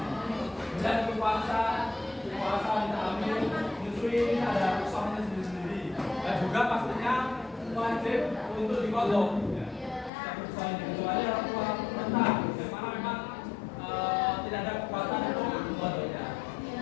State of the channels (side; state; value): right; drops out; at 10.1 s